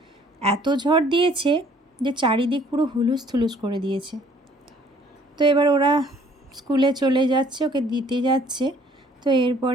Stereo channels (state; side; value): normal; both; correlation 0.58